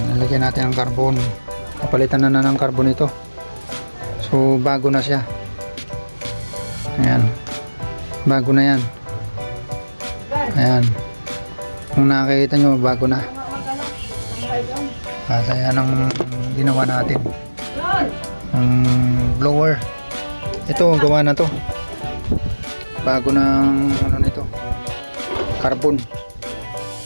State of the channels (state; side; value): inverted; both; correlation -1.00